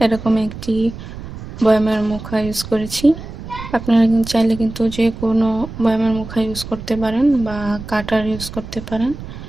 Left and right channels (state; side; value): noise; right; rumble, 12 dB below the sound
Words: এরকম একটি বয়ামের মুখা ইউজ করেছি। আপনারা চাইলে কিন্তু যে কোনো বয়ামের মুখা ইউজ করতে পারেন বা কাটার ইউজ করতে পারেন।